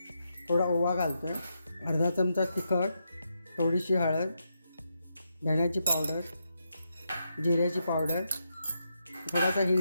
थोडा ओवा घालतो आहे, अर्धा चमचा तिखट, थोडीशी हळद, धण्याची पावडर, जिऱ्याची पावडर, थोडासा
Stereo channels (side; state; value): both; inverted; correlation -0.83